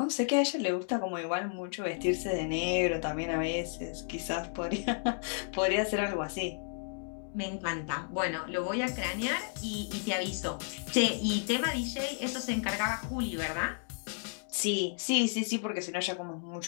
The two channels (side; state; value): right; silent; 56 dB below the other